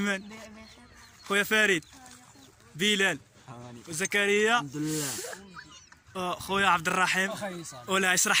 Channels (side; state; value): both; identical; correlation 1.00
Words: خويا فريد، بلال وزكريا، الحمد لله. خويا عبد الرحيم. ولا